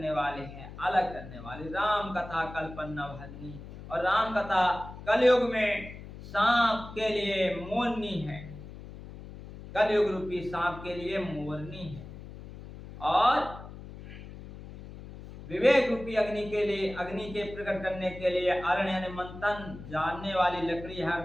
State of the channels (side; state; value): left; noise; hum, 14 dB below the sound